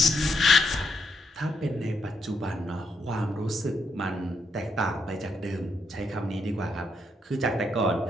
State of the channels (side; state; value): both; normal; correlation 0.78